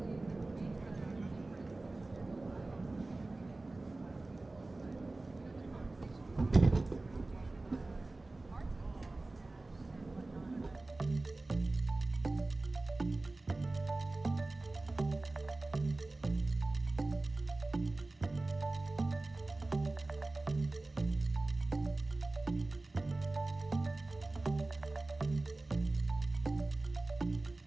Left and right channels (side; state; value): left; quieter; 3.1 dB